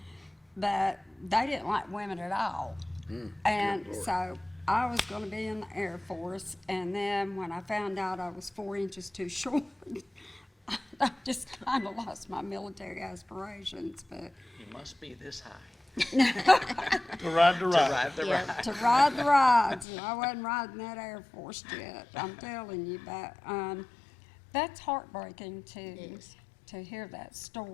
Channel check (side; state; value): right; drops out; at 19.9 s